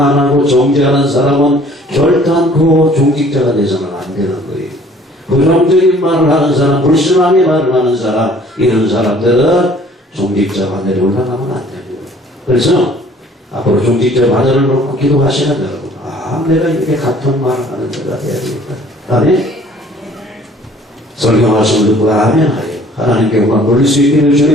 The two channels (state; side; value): normal; both; correlation 0.55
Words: 정죄하는 사람은 결단코 종직자가 돼서는 안 되는 거예요. 부정적인 말을 하는 사람, 불신앙의 말을 하는 사람, 이런 사람들은 종직자 바늘에 올라가면 안 됩니다. 그래서 앞으로 종직자 바늘을 놓고 기도하시는 여러분, 내가 이렇게 같은 말을 하는 자가 돼야 되겠다. 아멘. 설교하시는 듣고 아멘 하여 하나님께 영광 돌릴 수 있기를